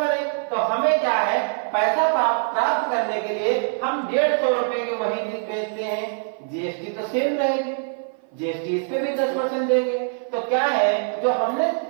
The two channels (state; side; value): silent; left; 56 dB below the other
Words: नहीं। तो हमें क्या है, पैसा प्राप्त करने के लिए हम 150 रुपए की वही चीज बेचते हैं, जीएसटी तो सेम रहेगी, जीएसटी इस पे भी 10% देंगे। तो क्या है, जो हमने